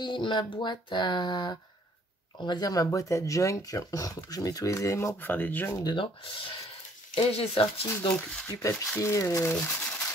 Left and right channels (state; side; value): normal; both; correlation 0.60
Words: ma boîte à, on va dire ma boîte à junk. Je mets tous les éléments pour faire des junk dedans. Et j'ai sorti donc du papier,